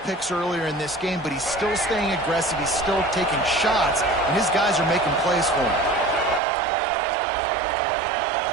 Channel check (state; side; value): drops out; left; at 6.4 s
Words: picks earlier in this game, but he's still staying aggressive. He's still taking shots, and his guys are making plays for him.